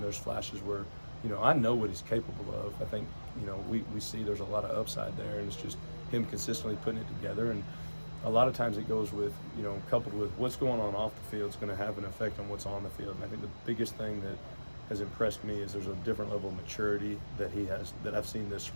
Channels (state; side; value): inverted; both; correlation -1.00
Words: there's flashes where, I know what he's capable of. I think, we see there's a lot of upside there, and it's just him consistently putting it together. And a lot of times it goes with, coupled with what's going on off the field is going to have an effect on what's on the field. And I think the biggest thing that has impressed me is there's a different level of maturity that he has, that I've seen this